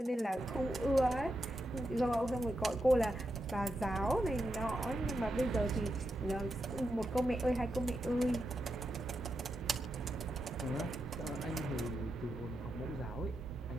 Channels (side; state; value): both; normal; correlation 0.86